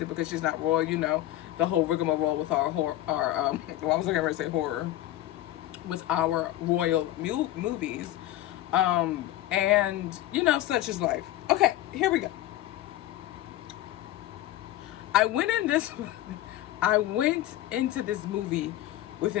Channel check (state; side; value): quieter; right; 14.5 dB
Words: because she's not royal. You know, the whole rigmarole with our well, I was going to say horror, with our royal movies. And, you know, such is life. Okay, here we go. I went into this movie with